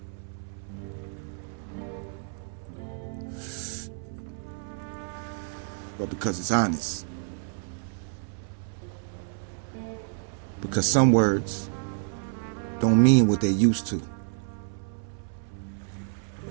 but because it's honest. Because some words don't mean what they used to.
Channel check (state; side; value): silent; left; 58 dB below the other